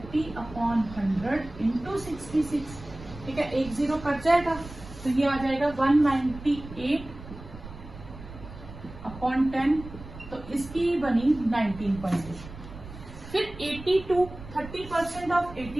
× 66। ठीक है, 1 0 कट जाएगा, तो ये आ जाएगा 198/10, तो इसकी बनी 19.8। फिर 82, 30% ऑफ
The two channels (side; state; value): right; noise; rumble, 15 dB below the sound